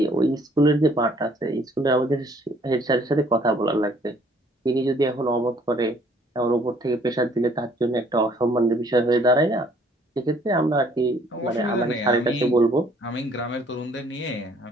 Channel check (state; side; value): normal; both; correlation 0.61